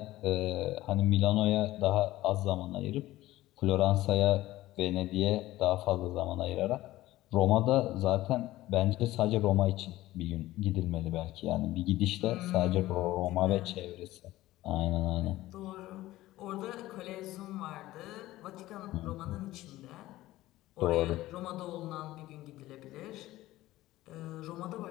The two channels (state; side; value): quieter; right; 16.5 dB